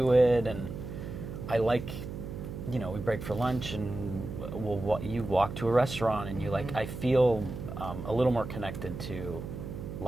it, and I like, we break for lunch and you walk to a restaurant and you like, I feel a little more connected to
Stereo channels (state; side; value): noise; right; hum, 8 dB below the sound